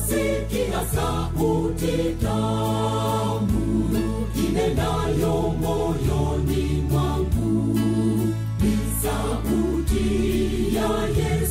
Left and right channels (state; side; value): identical; both; correlation 1.00